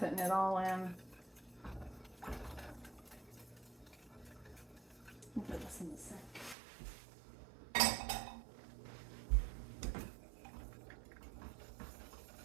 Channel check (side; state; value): left; drops out; at 6.6 s